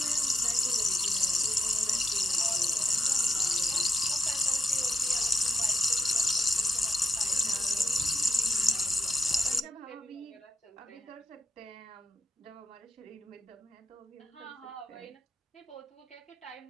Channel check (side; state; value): both; normal; correlation 0.85